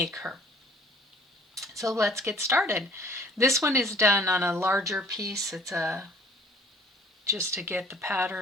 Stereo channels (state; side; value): normal; both; correlation 0.54